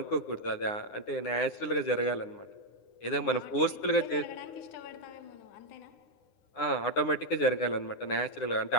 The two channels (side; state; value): right; late; 9.8 ms